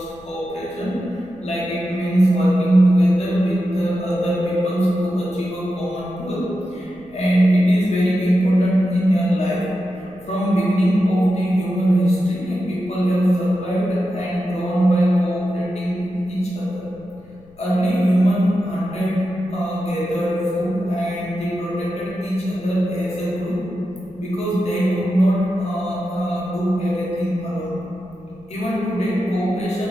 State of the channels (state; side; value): noise; left; rumble, 26 dB below the sound